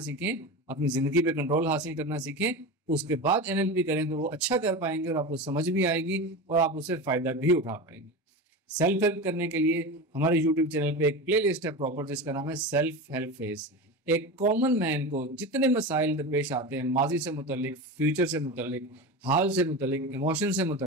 अपनी ज़िंदगी पे कंट्रोल हासिल करना सीखें। उसके बाद एनएलपी करें तो वो अच्छा कर पाएंगे और आपको समझ भी आएगी और आप उससे फ़ायदा भी उठा पाएंगे। सेल्फ हेल्प करने के लिए हमारे यूट्यूब चैनल पे एक प्लेलिस्ट है प्रॉपर, जिसका नाम है सेल्फ हेल्प फेज। एक कॉमन मैन को जितने मसाइल दरपेश आते हैं, माजी से मुतल्लिक, फ्यूचर से मुतल्लिक, हाल से मुतल्लिक, इमोशन से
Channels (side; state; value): both; normal; correlation 0.25